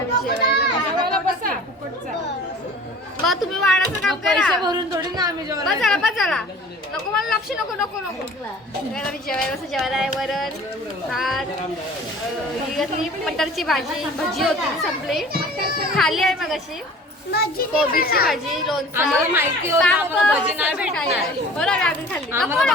मी जेवायला बसा फुकटचा. मग तुम्ही वाढायचं काम पैसे करा. भरून थोडी ना आम्ही जेवण. बस चला नको मला लक्ष नको नको नको. मी जेवायला कसं जेवायला आहे वरण भात ही कसली मटरची भाजी भजी होती ती संपली. खाली आहे मग अशी कोबीची भाजी लोणचं. आम्हाला माहिती होतं पापड, आपण भजी नाही भेटणार. बरं आम्ही खाल्ली. नको आम्हाला नको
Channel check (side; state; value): both; normal; correlation 0.45